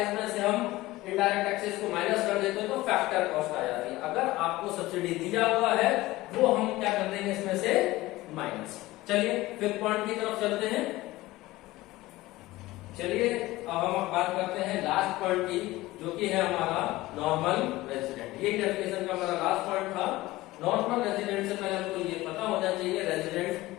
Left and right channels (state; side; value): quieter; right; 18.4 dB